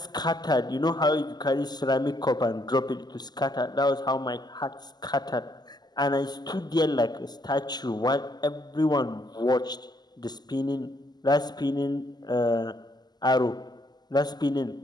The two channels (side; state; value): right; late; 0.20 ms